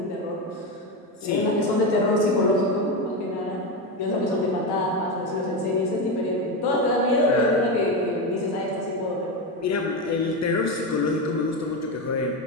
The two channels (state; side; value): normal; both; correlation 0.14